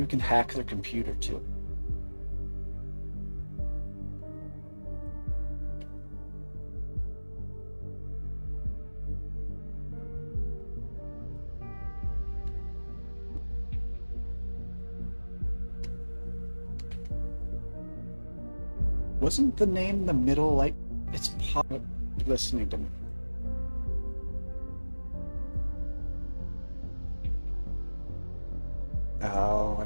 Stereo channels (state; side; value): inverted; both; correlation -1.00